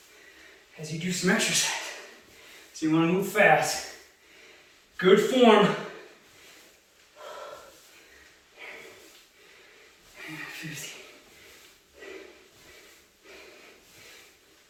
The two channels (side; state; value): both; identical; correlation 1.00